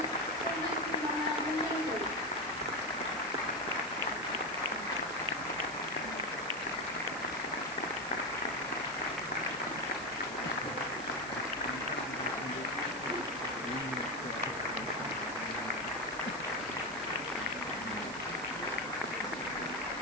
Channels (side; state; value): right; noise; hiss, 13 dB below the sound